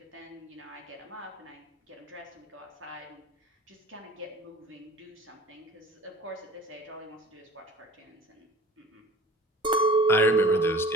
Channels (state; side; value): normal; both; correlation 0.44